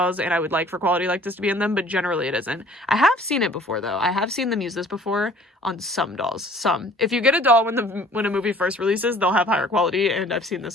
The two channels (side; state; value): both; normal; correlation 0.52